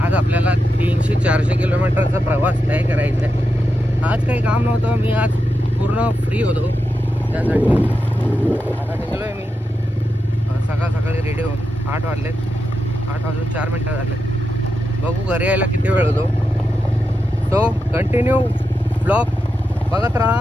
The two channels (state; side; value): normal; both; correlation 0.87